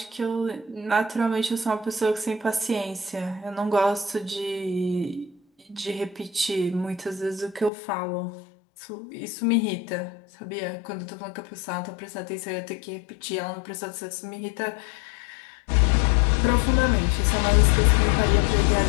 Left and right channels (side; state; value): right; drops out; at 7.7 s